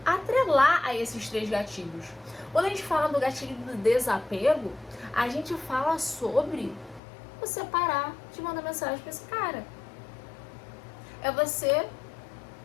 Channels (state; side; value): drops out; right; at 7.0 s